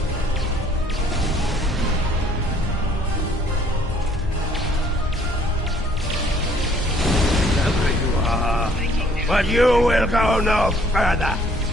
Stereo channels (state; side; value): normal; both; correlation 0.60